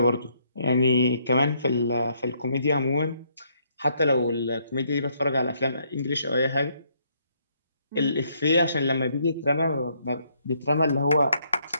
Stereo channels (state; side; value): inverted; both; correlation -0.71